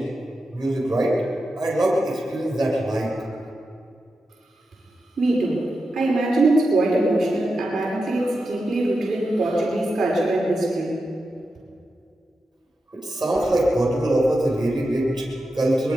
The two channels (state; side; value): normal; both; correlation 0.89